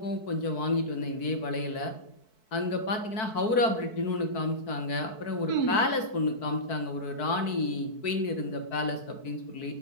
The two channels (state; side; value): late; right; 4.6 ms